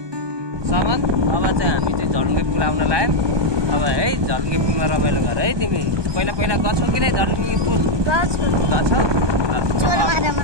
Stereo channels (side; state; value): left; late; 1.2 ms